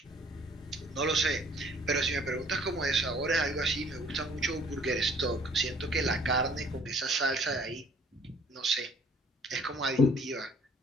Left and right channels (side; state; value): both; normal; correlation 0.57